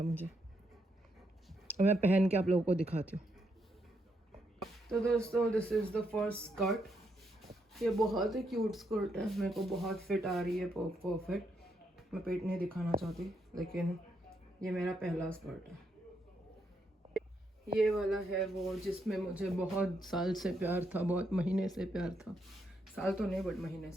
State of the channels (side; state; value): both; normal; correlation 0.78